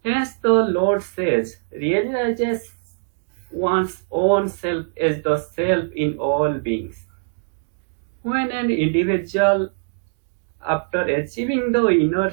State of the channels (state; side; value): silent; left; digital silence